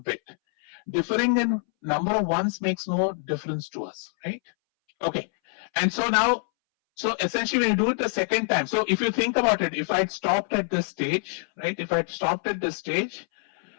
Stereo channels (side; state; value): right; silent; 61 dB below the other